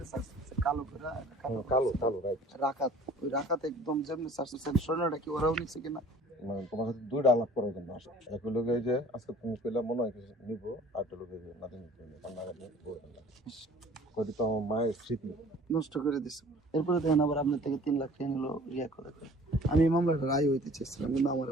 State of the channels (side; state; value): both; normal; correlation 0.49